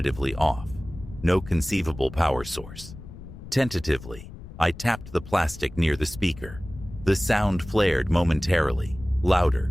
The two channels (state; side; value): noise; left; rumble, 15 dB below the sound